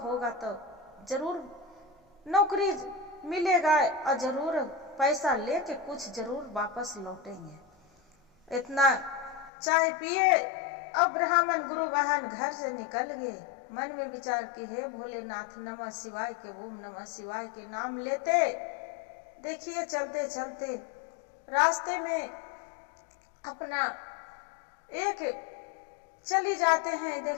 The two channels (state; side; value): drops out; right; at 9.5 s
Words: तो जरूर नौकरी मिलेगा और जरूर पैसा लेके कुछ जरूर वापस लौटेंगे। इतना चाय पिए अब ब्राह्मण गुरु बहन घर से निकल गए। मन में विचार कि हे भोलेनाथ, नमः शिवाय के ओम नमः शिवाय के नाम लेते देखिए चलते चलते रास्ते में अपना एक चली जाते हैं।